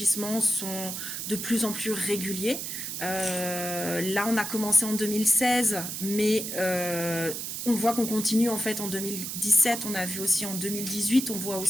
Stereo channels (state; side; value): noise; right; hiss, 5 dB below the sound